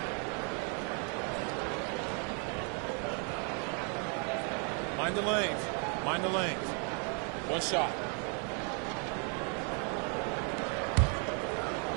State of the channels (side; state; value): left; quieter; 38.8 dB